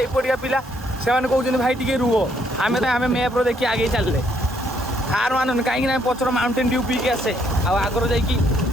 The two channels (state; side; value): normal; both; correlation 0.70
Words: एपटिया पिला से कहते भाई टिके रुह आम आम मैप्रे देखिए आगे चलते हार मान कहीं पचर माउंटेन ड्यू पी के आसे आगर जा